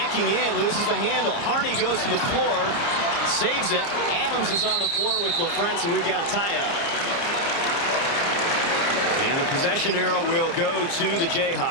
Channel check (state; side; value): late; right; 30 ms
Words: in, loses the handle. Harney goes to the floor, saves it. Adams is on the floor with LaFrance, and we've got a tie-up. And the possession arrow will go to the